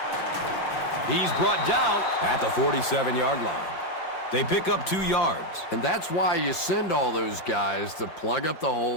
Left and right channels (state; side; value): late; right; 6.1 ms